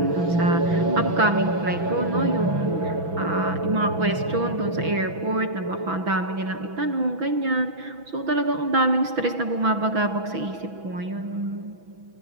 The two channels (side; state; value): left; late; 6.0 ms